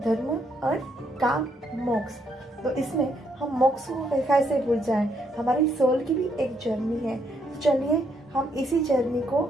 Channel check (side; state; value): both; normal; correlation 0.74